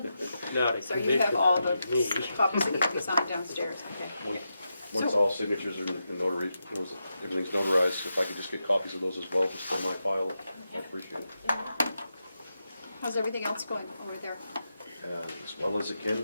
not a So you have commissioner all the like me. copies that need to be signed downstairs, okay. Once all signatures are notary, everything's notarized, if I could just get copies of those as well, just for my file, I'd appreciate it. How's everything else going over there? As well as it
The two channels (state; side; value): inverted; both; correlation -0.87